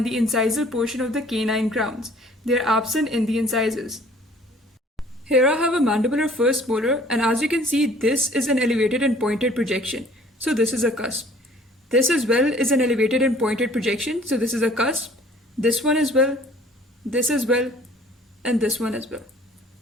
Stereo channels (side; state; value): both; normal; correlation 0.54